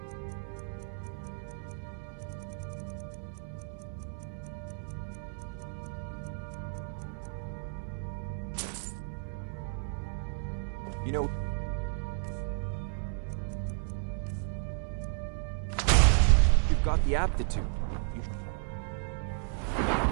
You know... You've got the aptitude. You...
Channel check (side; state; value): left; silent; 56 dB below the other